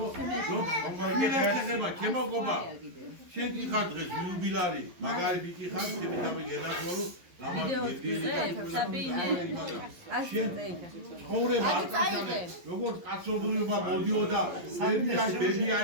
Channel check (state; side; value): late; left; 11 ms